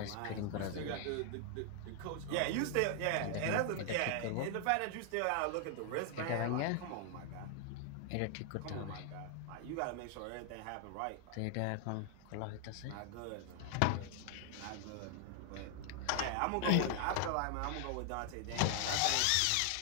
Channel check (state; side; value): different; both; correlation 0.00